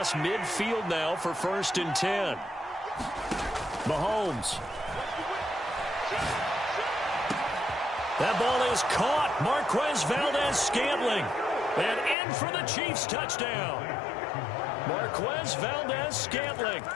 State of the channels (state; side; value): drops out; right; at 12.2 s